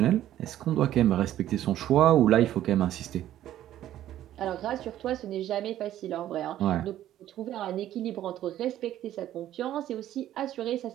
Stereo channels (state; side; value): quieter; left; 12.5 dB